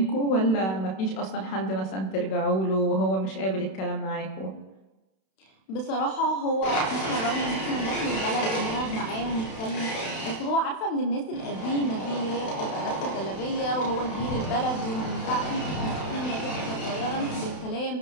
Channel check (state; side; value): late; right; 31 ms